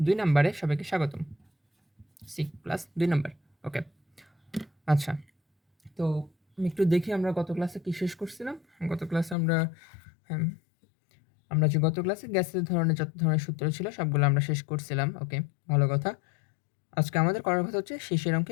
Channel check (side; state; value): right; drops out; at 9.3 s